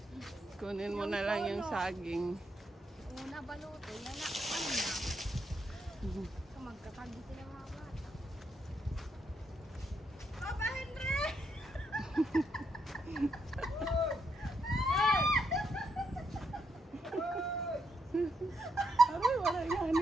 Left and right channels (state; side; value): normal; both; correlation 0.79